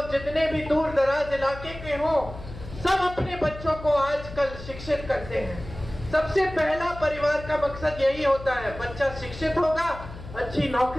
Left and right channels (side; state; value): left; noise; hum, 13 dB below the sound